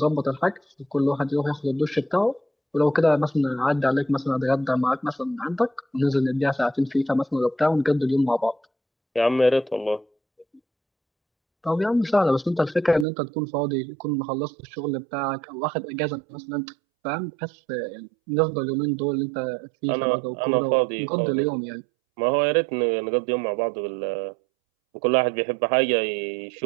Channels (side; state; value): left; drops out; at 13.1 s